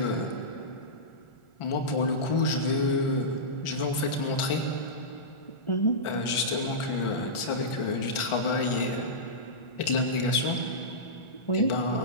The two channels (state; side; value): late; right; 1.4 ms